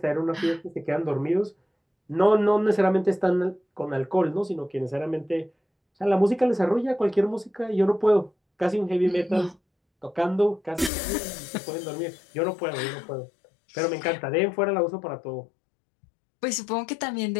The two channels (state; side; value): drops out; right; at 10.9 s